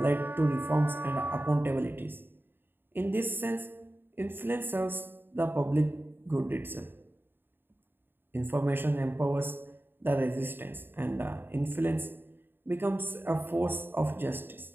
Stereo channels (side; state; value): left; late; 0.098 ms